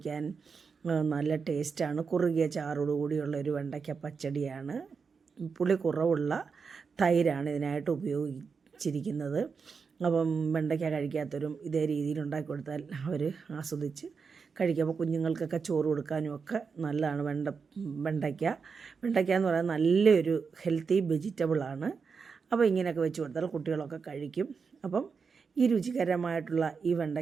നല്ല ടേസ്റ്റാണ്. കുറുകിയ ചാറോടുകൂടിയുള്ള ഒരു വെണ്ടയ്ക്ക പച്ചടിയാണ്. പുളി കുറവുള്ള തൈരാണ് ഇതിനായിട്ട് ഉപയോഗിച്ചിരിക്കുന്നത്. അപ്പം വെണ്ടയ്ക്ക കഴിക്കാത്തവരും ഇതേ രീതിയിൽ ഉണ്ടാക്കി കൊടുത്താൽ അവർ ആസ്വദിച്ച് കഴിക്കും. അപ്പോൾ കുഞ്ഞുങ്ങൾക്കൊക്കെ ചോറ് കൊടുക്കാനും ഒക്കെ നല്ലതാണ്. വെണ്ടയ്ക്ക എന്ന് പറയുന്നത് നല്ലൊരു ഹെൽത്തി വെജിറ്റബിളാണ്. അപ്പോൾ ഇങ്ങനെയൊക്കെ വെച്ച് കൊടുത്താൽ കുട്ടികളൊക്കെ കഴിക്കും. അപ്പം ഈ രുചികരമായിട്ടുള്ള ഈ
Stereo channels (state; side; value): quieter; left; 5.4 dB